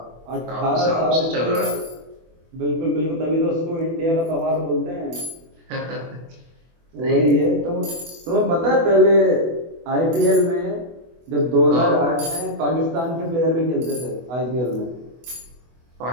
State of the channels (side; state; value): left; late; 24 ms